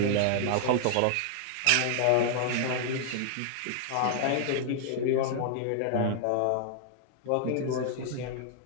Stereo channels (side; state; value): both; different; correlation -0.01